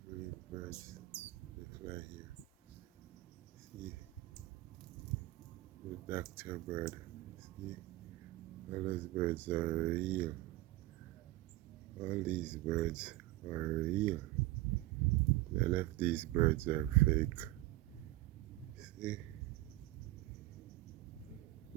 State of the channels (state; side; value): quieter; left; 18.1 dB